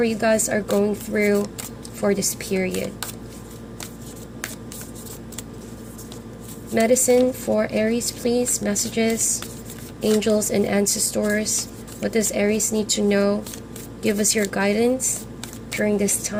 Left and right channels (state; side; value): identical; both; correlation 1.00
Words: you guys are going through for this period. Medicine for Aries, please. Messages, angels and ancestors. What does Aries need to know? Give us your guidance during this